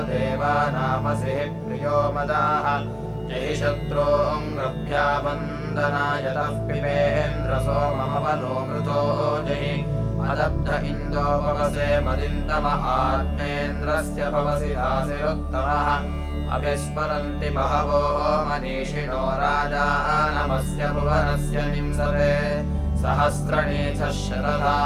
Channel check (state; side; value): identical; both; correlation 1.00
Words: देवानामसिः प्रियो मदाः जहि शत्रूङ्गभ्यावन्दनायतः पिबेन्द्र सोममवनो मृतो जहि अदब्ध इन्दो भवसे मदिन्दम आत्मेन्द्रस्य भवसि दासिरुत्तमः अभिस्मरन्ति बहवो मनीषिणो राजानमस्य भुवनस्य निंसते सहस्रणीचः